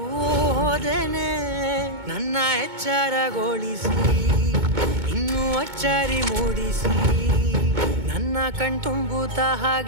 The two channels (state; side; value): late; left; 2.2 ms